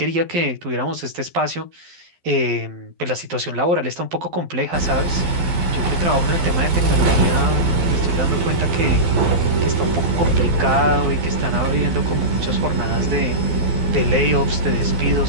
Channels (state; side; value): late; left; 12 ms